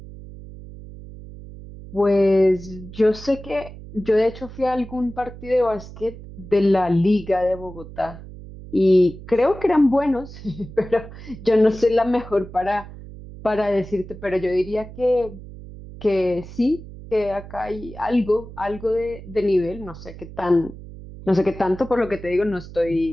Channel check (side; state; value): right; noise; hum, 15 dB below the sound